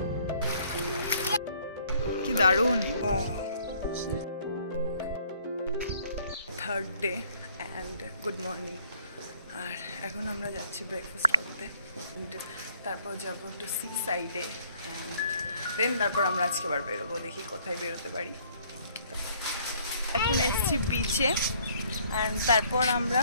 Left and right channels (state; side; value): inverted; both; correlation -0.62